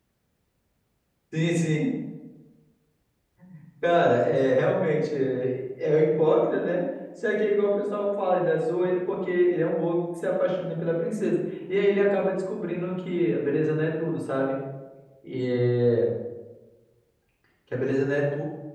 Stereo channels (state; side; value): identical; both; correlation 1.00